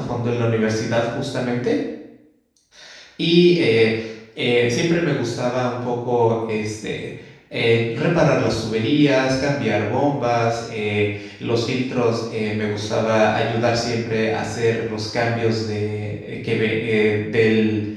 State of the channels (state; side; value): identical; both; correlation 1.00